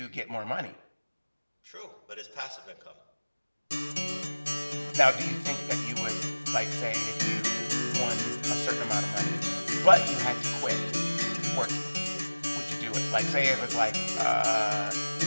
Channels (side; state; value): both; inverted; correlation -1.00